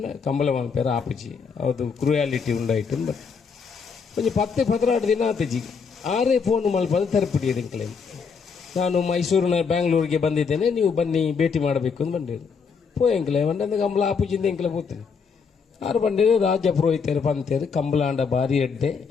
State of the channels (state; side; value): quieter; right; 5.7 dB